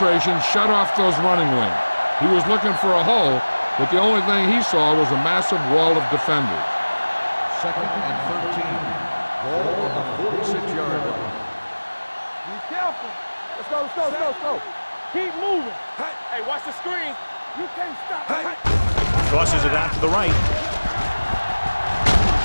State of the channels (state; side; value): inverted; both; correlation -1.00